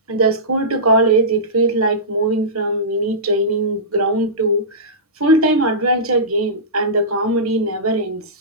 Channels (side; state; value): both; normal; correlation -0.19